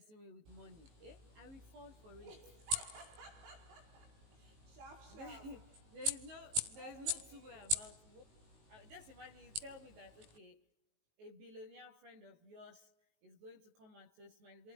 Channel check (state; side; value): late; left; 18 ms